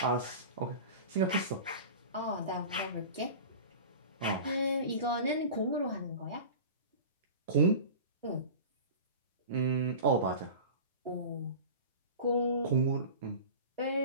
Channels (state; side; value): inverted; both; correlation -0.34